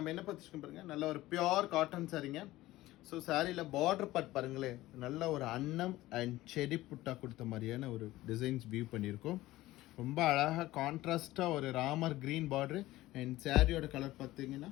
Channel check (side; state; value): right; quieter; 16.9 dB